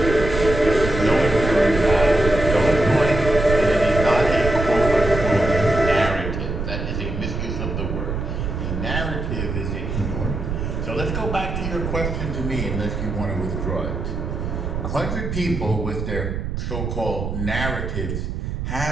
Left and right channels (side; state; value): right; noise; rumble, 4 dB below the sound